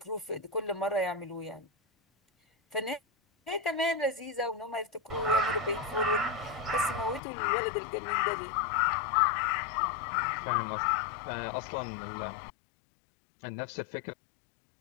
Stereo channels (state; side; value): drops out; right; at 7.2 s